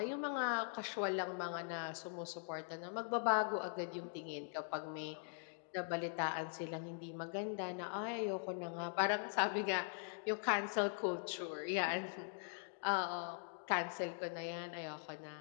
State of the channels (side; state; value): right; silent; digital silence